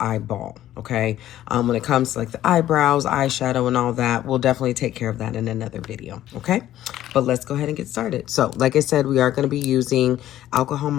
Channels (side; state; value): right; quieter; 13.0 dB